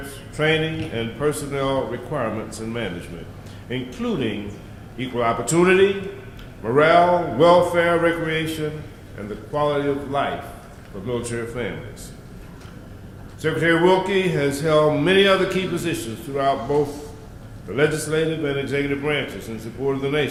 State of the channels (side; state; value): both; identical; correlation 1.00